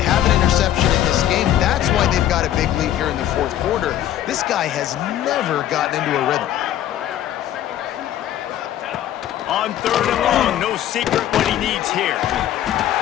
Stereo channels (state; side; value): quieter; right; 11.9 dB